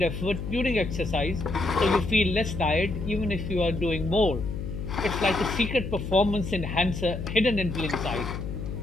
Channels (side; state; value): left; noise; hum, 6 dB below the sound